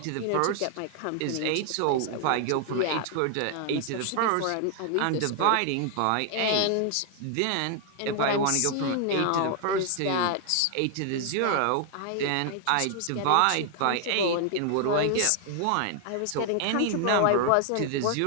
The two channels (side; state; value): both; different; correlation 0.00